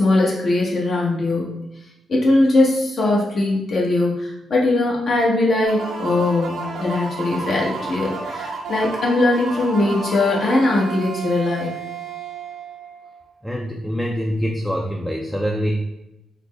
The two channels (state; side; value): normal; both; correlation 0.84